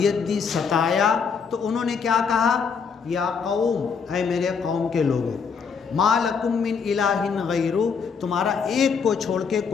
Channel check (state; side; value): quieter; right; 5.9 dB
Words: दी, सताया, तो उन्होंने क्या कहा, या कौम, ऐ मेरे कौम के लोगों, मा लकुम मिन इलाहिन गैरु, तुम्हारा एक को छोड़ के